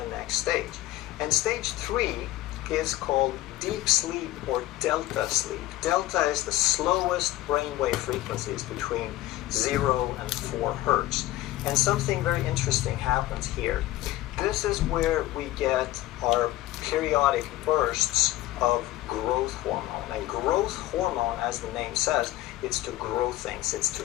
next stage. And stage 3 is called deep sleep or delta sleep. Delta is the slowest brainwave frequencies, between 0 and 4 hertz. And something very interesting happens here. This is where we get our periodic bursts of growth hormone. And growth hormone, as the name says, it's to grow things, it's to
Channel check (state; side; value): quieter; right; 15.9 dB